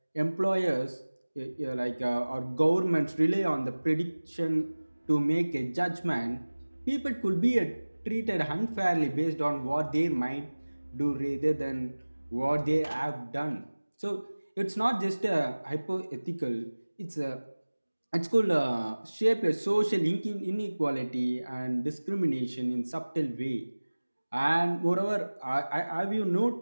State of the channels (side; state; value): both; inverted; correlation -1.00